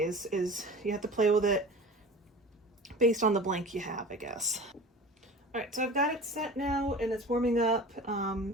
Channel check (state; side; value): normal; both; correlation 0.37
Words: is you have to play with it based on the blank you have, I guess. All right, so I've got it set now and it's warming up.